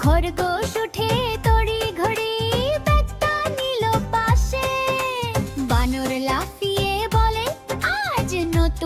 খরগোশ উঠে তড়ি ঘড়ি ব্যাগটা নিল পাশে। বানর লাফিয়ে বলে আজ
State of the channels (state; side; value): identical; both; correlation 1.00